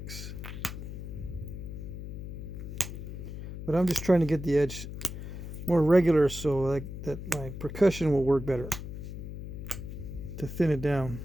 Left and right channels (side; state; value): left; noise; hum, 8 dB below the sound